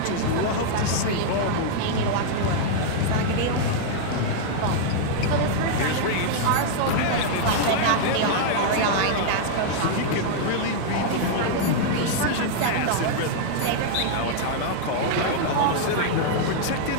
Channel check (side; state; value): both; different; correlation -0.01